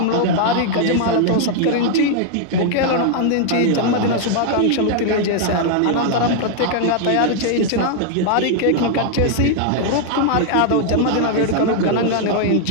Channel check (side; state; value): both; different; correlation 0.00